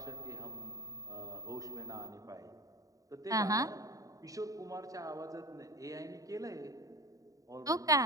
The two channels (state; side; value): late; left; 0.16 ms